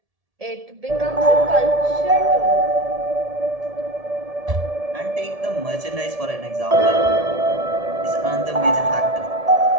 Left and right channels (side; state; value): left; late; 1.7 ms